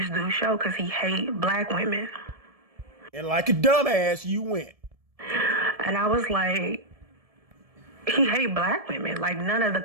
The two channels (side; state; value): left; late; 1.7 ms